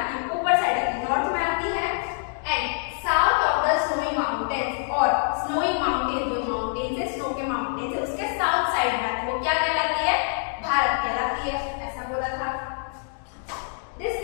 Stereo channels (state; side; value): silent; right; 61 dB below the other